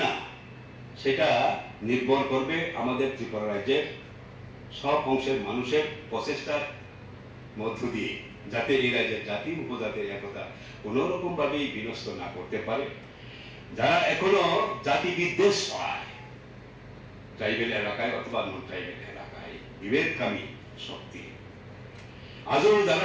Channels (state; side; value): identical; both; correlation 1.00